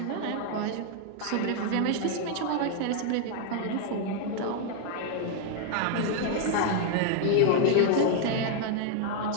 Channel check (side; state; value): both; different; correlation 0.00